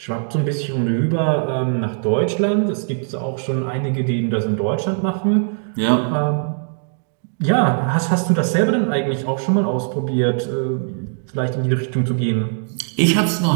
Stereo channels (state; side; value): silent; left; digital silence